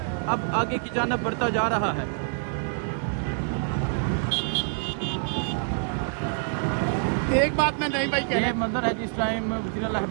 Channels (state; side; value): silent; left; 61 dB below the other